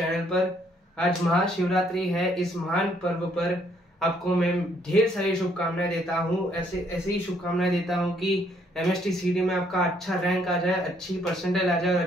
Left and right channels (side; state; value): both; normal; correlation 0.68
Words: पर। आज महाशिवरात्रि है। इस महान पर्व पर आपको मैं ढेर सारी शुभकामनाएं देता हूँ। ऐसे ही शुभकामनाएं देता हूँ कि MST में आपका अच्छा रैंक आ जाए, अच्छी परसेंटेज आ जाए और